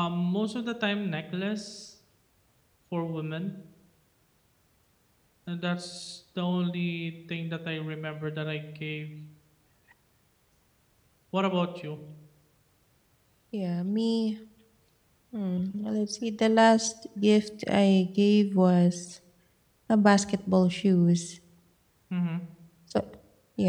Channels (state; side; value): identical; both; correlation 1.00